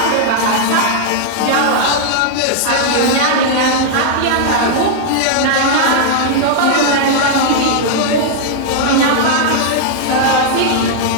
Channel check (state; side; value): different; both; correlation -0.01